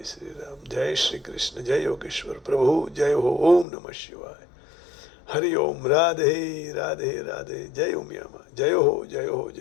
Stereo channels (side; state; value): right; drops out; at 3.7 s